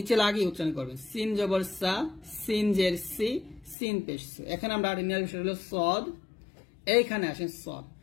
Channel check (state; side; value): drops out; right; at 3.8 s